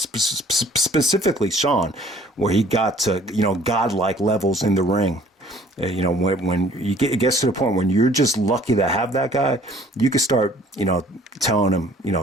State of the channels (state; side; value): normal; both; correlation 0.55